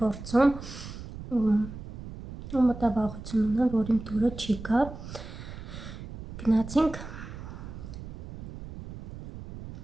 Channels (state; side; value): noise; right; rumble, 11 dB below the sound